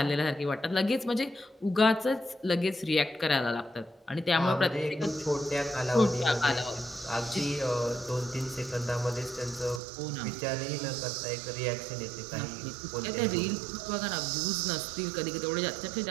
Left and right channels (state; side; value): drops out; left; at 9.8 s